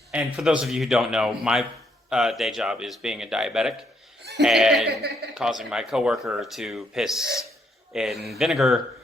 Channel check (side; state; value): both; normal; correlation 0.73